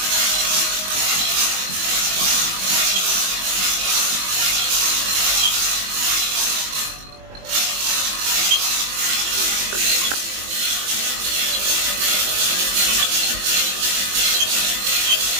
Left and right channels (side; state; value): left; late; 21 ms